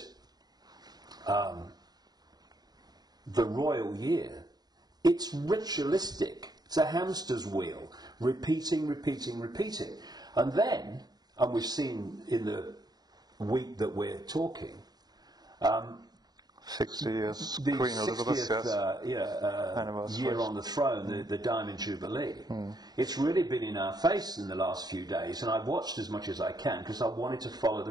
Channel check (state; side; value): late; left; 0.19 ms